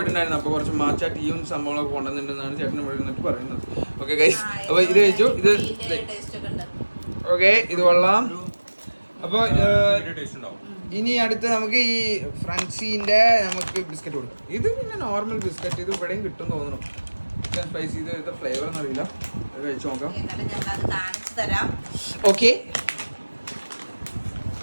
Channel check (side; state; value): both; inverted; correlation -1.00